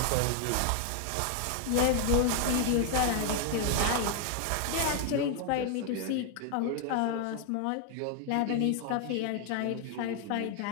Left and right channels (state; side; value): different; both; correlation 0.00